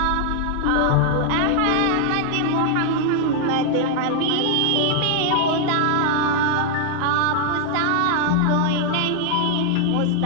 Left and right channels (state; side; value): different; both; correlation 0.00